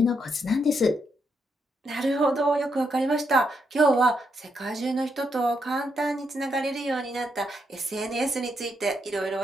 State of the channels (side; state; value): both; normal; correlation 0.79